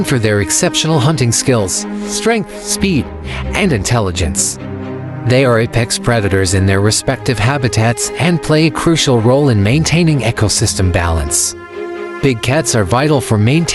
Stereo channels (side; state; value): both; identical; correlation 1.00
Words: for their exceptional hunting skills, strength, speed, and intelligence. They are apex predators in their respective habitats and play a crucial role in maintaining ecosystem balance. Big cats are vital for